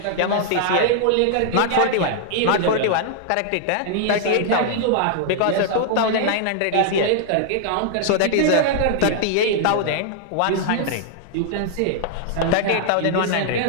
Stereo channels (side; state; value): both; different; correlation -0.01